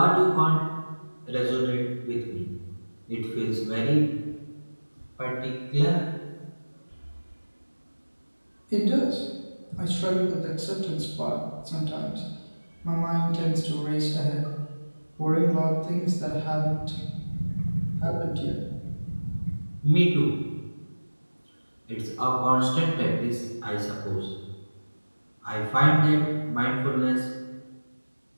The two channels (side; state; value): both; inverted; correlation -1.00